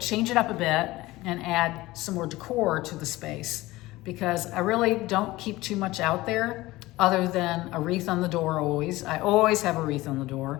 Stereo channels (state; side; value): quieter; right; 18.8 dB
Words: it up a bit and add some more decor to the space because I really don't keep too much out there other than a wreath on the door always. I always have a wreath on the